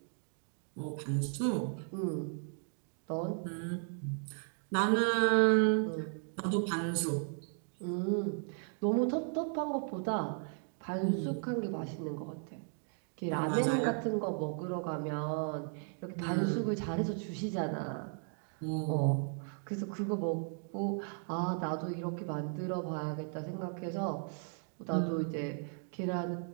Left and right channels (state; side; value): silent; left; 54 dB below the other